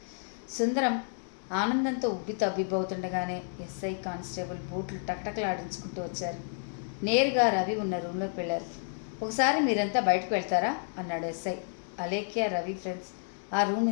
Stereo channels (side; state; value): right; silent; 57 dB below the other